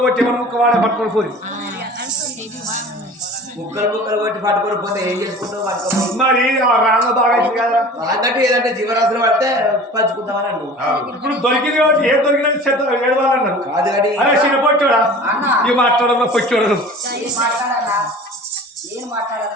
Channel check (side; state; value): both; normal; correlation 0.41